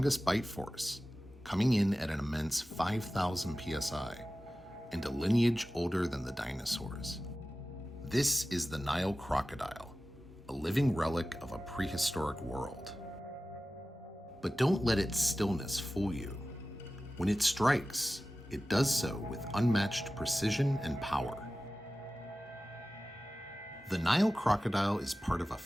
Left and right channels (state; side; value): normal; both; correlation 0.95